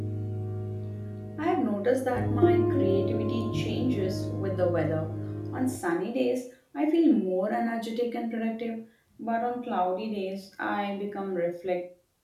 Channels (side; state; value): both; identical; correlation 1.00